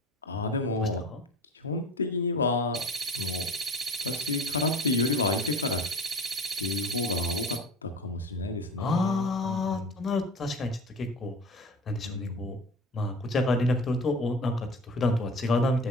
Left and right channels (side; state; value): both; normal; correlation 0.36